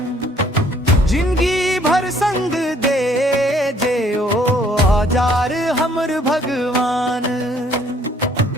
जिंदगी भर संग दे जे ओ आजार हमर भगवान।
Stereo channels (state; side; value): normal; both; correlation 0.61